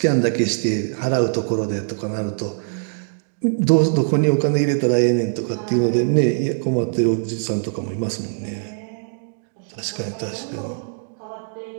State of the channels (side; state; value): left; silent; digital silence